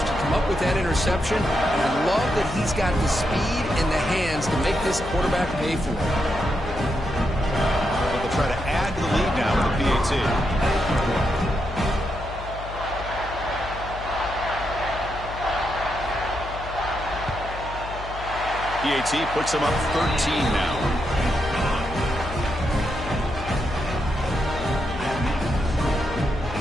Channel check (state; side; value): noise; left; hum, 11 dB below the sound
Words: to come up with that interception. And I love that he's got the speed and the hands to make this quarterback pay for it. Try to add to the lead now with the PAT. PAT puts him up 13 now.